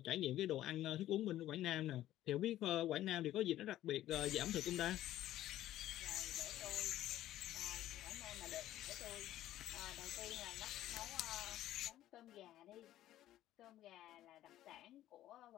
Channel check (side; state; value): right; quieter; 13.6 dB